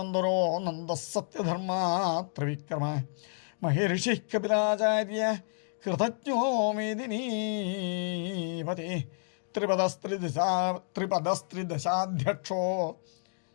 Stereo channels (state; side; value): silent; right; digital silence